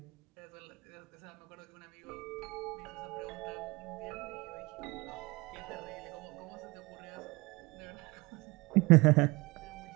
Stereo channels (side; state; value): left; quieter; 24.1 dB